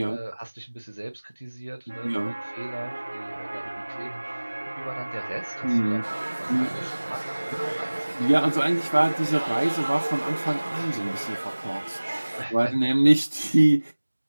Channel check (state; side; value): inverted; both; correlation -1.00